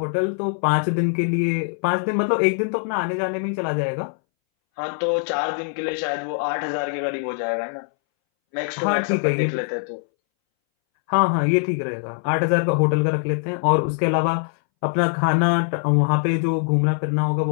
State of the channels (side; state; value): right; silent; 62 dB below the other